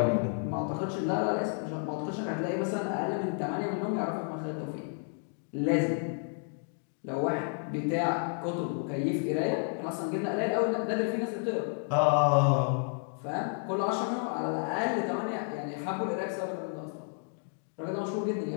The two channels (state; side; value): silent; right; 57 dB below the other